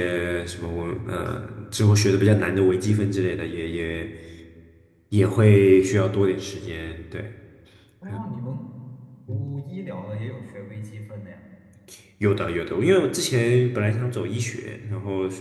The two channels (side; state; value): both; identical; correlation 1.00